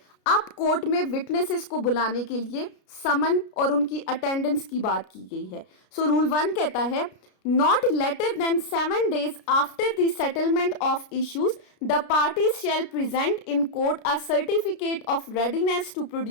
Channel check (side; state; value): right; late; 33 ms